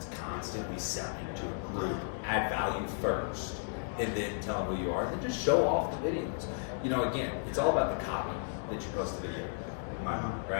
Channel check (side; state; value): right; silent; 55 dB below the other